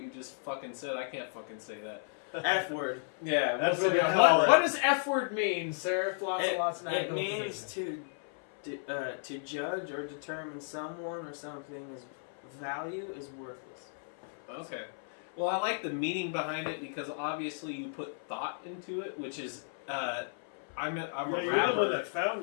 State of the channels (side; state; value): right; silent; 55 dB below the other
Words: you just fucking said, I can't fucking say that. F-word. Yeah, That's what's what we it- call it. What does F word mean, sir? Flots and Lots and Eye It means Amplification. to judge or determine someone or something's value is worthless. Okay. Well, I like the meaning behind it because obviously you put thought into it, which is I'm a You're rapper. the one that found